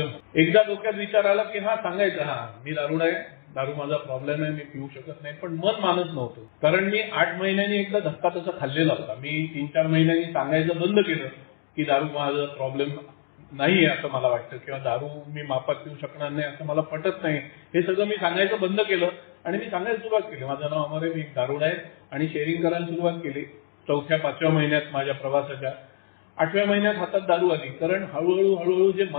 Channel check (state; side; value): silent; right; digital silence